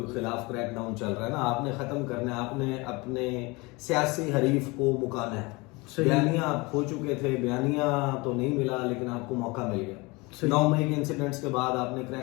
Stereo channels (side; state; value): right; quieter; 25.2 dB